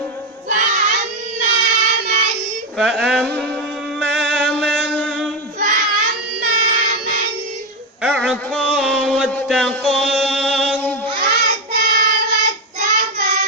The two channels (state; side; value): normal; both; correlation 0.09